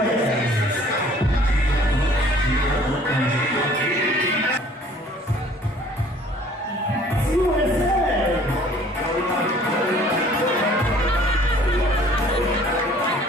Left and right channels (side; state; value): both; normal; correlation 0.54